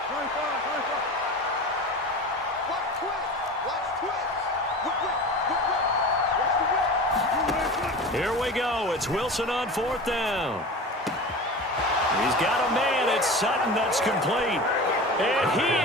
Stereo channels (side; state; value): both; normal; correlation 0.32